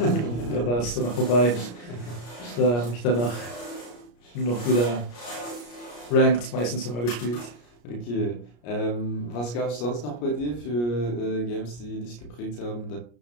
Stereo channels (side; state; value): right; late; 33 ms